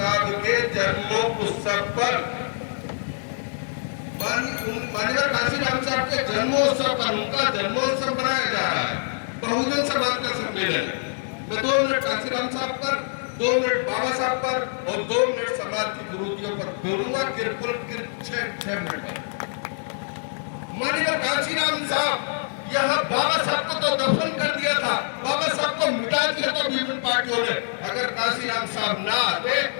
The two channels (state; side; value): silent; right; digital silence